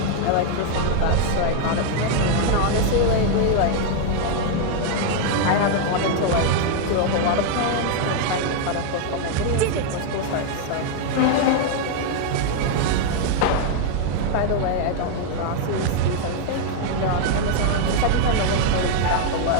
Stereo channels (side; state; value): both; different; correlation 0.00